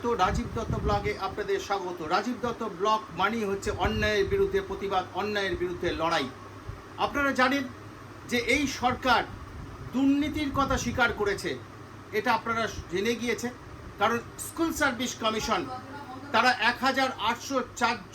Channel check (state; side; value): identical; both; correlation 1.00